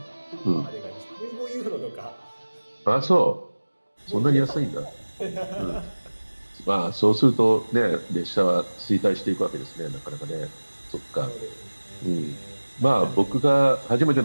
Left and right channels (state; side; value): inverted; both; correlation -1.00